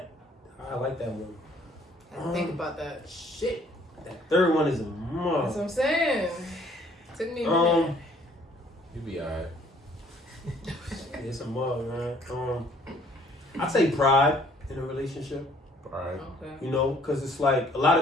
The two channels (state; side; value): normal; both; correlation 0.60